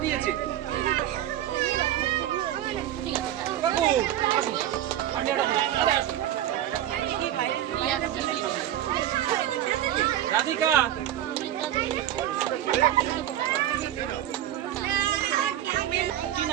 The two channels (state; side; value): quieter; left; 12.2 dB